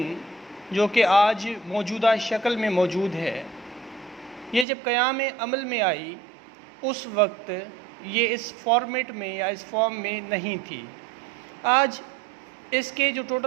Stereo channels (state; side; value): drops out; left; at 4.7 s